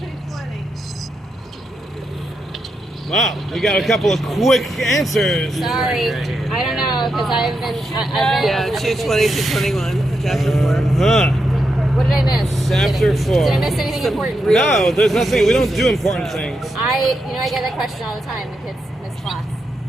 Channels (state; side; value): normal; both; correlation 0.84